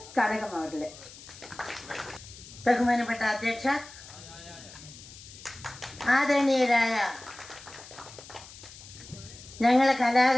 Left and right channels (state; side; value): noise; left; hiss, 17 dB below the sound